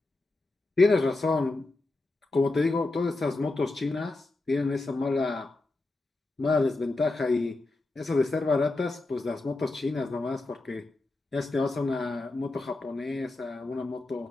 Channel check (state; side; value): quieter; right; 3.1 dB